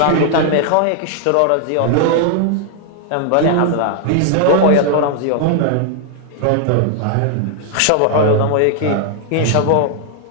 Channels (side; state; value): both; different; correlation 0.00